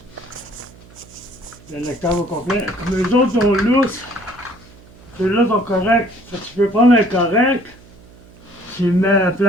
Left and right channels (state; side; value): noise; right; hum, 23 dB below the sound